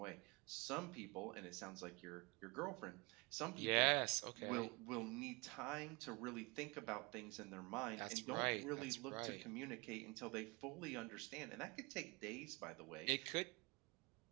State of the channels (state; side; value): quieter; left; 27.0 dB